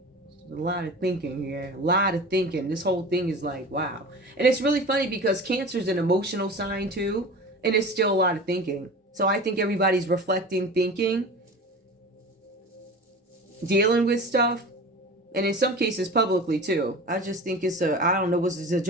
A lot of thinking here. A lot of thinking. This whole thing is like, wow. And it's really funny because Cancer is an emotional sign too. And it's still a lot of thinking. So I think everybody's reflecting, thinking, dealing with stuff. And in some cases publicly too. I just think it's I don't know, it's a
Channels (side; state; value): both; normal; correlation 0.35